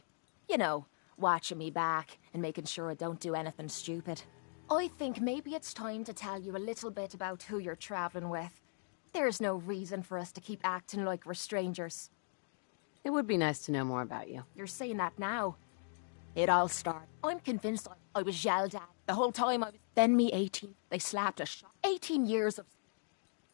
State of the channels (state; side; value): silent; right; digital silence